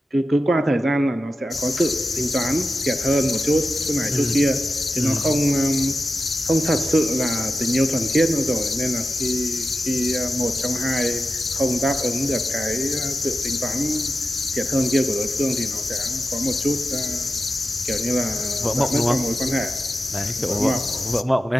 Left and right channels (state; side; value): normal; both; correlation 0.92